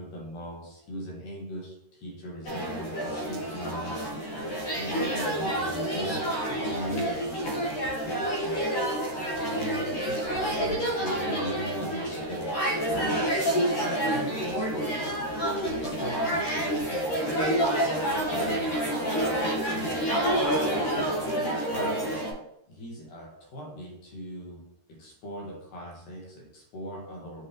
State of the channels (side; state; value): right; late; 13 ms